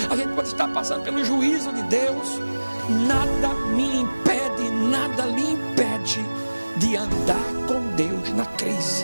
a gente pode estar passando pelo juízo de Deus. Nada me impede, nada lhe impede de andar com Deus na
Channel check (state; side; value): inverted; both; correlation -1.00